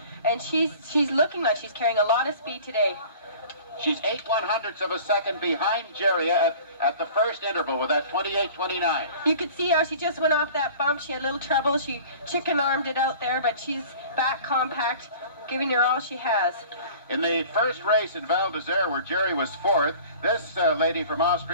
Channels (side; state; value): both; inverted; correlation -0.45